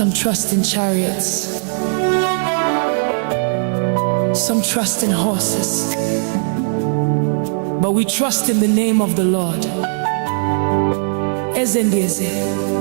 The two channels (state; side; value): silent; left; 67 dB below the other